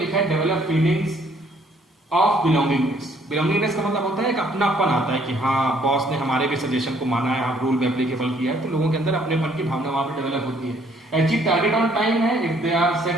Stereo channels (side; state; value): both; normal; correlation 0.63